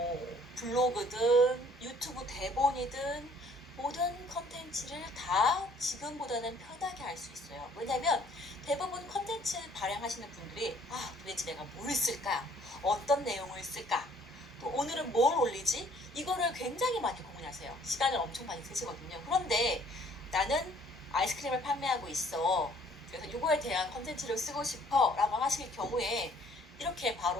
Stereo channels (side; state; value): both; normal; correlation 0.59